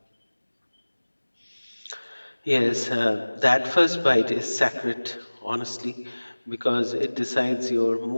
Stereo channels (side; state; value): both; inverted; correlation -1.00